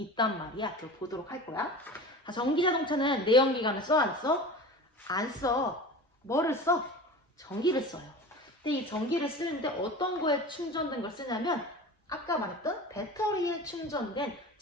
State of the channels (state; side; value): normal; both; correlation 0.34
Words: 말이야. 그걸 보도록 할 거야. 자, 전기 자동차는 내연기관을 써 안 써? 안 써. 뭐를 써? 전기를 써요. 근데 이 전기를 쓰는데 어떤 거에 충전된 걸 쓰냐면 아까 말했던 배터리에 충전된